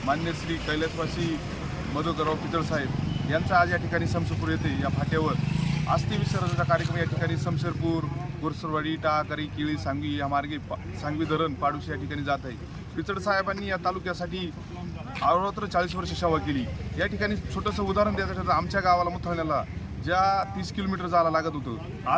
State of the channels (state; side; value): identical; both; correlation 1.00